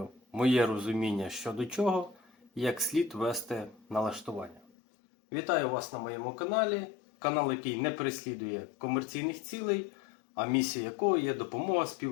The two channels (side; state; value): right; drops out; at 4.7 s